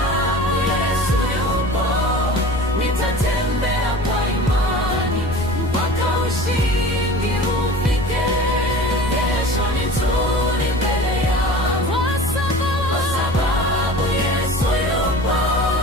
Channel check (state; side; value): noise; left; rumble, 9 dB below the sound